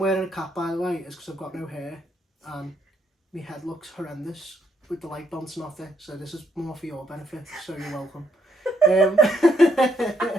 a cap, by the way, is because I've got no hair and my head looks horrendous with the light bouncing off it, so this is more for your benefit, so you're welcome.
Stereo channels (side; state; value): both; normal; correlation 0.74